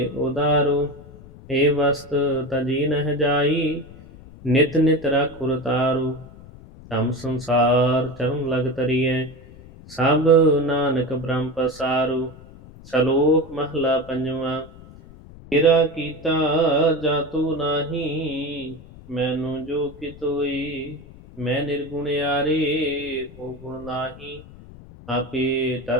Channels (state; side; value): noise; left; rumble, 19 dB below the sound